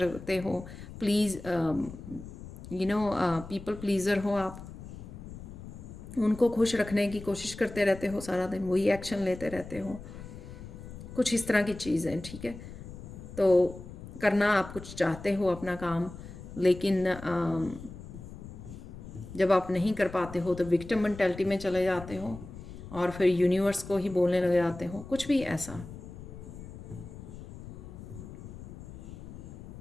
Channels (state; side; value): noise; left; rumble, 13 dB below the sound